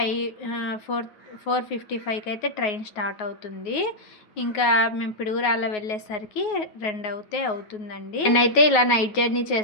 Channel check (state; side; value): late; right; 9.4 ms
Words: అయితే ట్రైన్ స్టార్ట్ అవుతుంది. ఇంకా మేము పిడుగురాళ్ళ వెళ్ళేసరికి 2 అవుతుందండి. నేనైతే ఇలా నైట్ జర్నీ